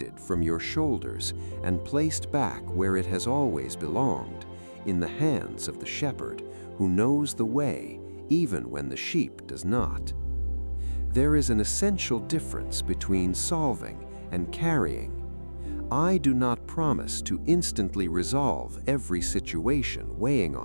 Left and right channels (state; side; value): inverted; both; correlation -1.00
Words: from your shoulders and placed back where it has always belonged, in the hands of the shepherd who knows the way even when the sheep does not. There is an essential difference between solving and carrying. I do not promise to instantly resolve every situation weighing